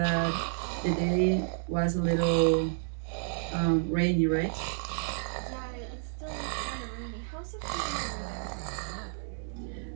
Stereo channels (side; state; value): left; silent; 57 dB below the other